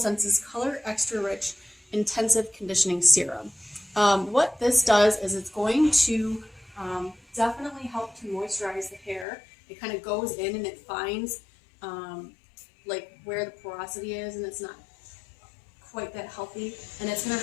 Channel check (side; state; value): right; drops out; at 9.2 s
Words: Color Extra Rich Intensive Conditioning Serum. What this does is it's going to definitely help to moisturize the hair. It kind of goes in and it finds like where the porosity is, and it's not quite that healthy. And it's going